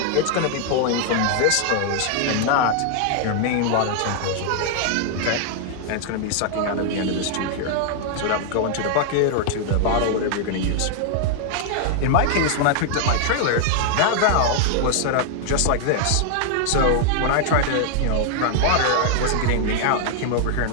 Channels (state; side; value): different; both; correlation -0.01